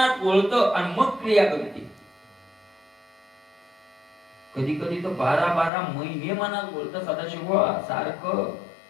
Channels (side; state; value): right; drops out; at 5.7 s